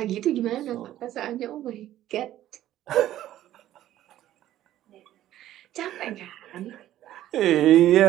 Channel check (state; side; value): quieter; left; 13.1 dB